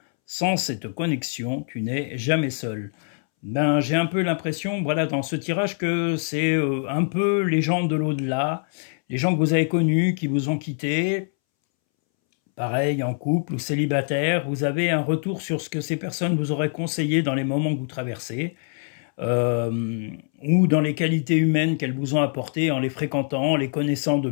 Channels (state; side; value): silent; right; 63 dB below the other